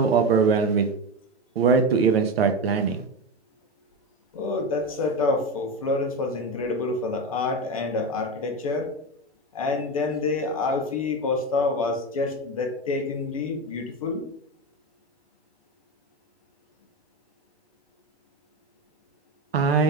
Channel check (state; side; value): normal; both; correlation 0.19